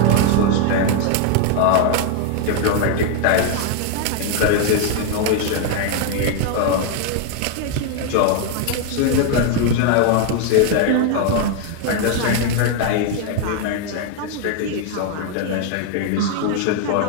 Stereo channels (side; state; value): both; different; correlation 0.00